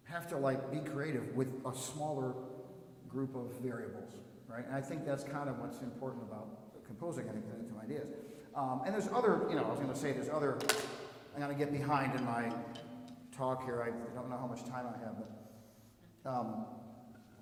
have to like be creative with a smaller group of variables, right? And I think that's kind of what's important about composing any kind of ideas. And there's other, you know, I was going to say there's other. I'm going to get behind in my talk here. I don't know how much time I have, but.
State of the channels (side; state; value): both; identical; correlation 1.00